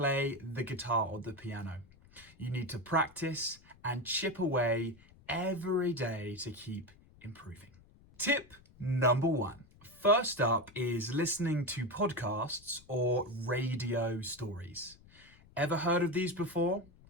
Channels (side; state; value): left; noise; rumble, 25 dB below the sound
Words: the guitar or the piano. You need to practice and chip away every day to keep improving. Tip number 1. First up is listening to podcasts or radio stories. Ever heard of these before?